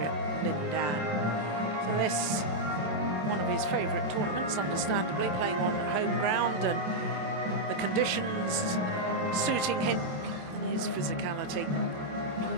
Lin Dan. So this, one of his favourite tournaments, understandably, playing on home ground and the conditions suiting him and his physicality.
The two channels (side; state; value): left; late; 27 ms